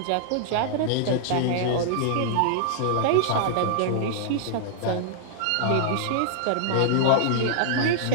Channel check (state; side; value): different; both; correlation -0.01